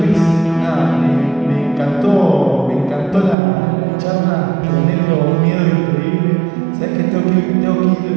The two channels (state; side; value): drops out; left; at 3.4 s